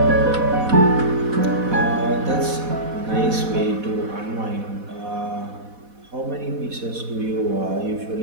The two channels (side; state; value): left; late; 4.1 ms